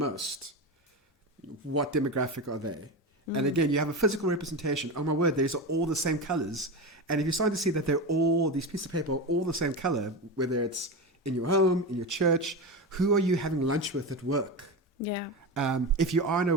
what demographic are they? And again, you have a physical representation. Oh my word, these are all the same colors. And if you're starting to see that these pieces of paper are all the same color, whether it's in your home, in your church? Who are you having lunch with at work? Yeah. If you are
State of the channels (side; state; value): both; normal; correlation 0.21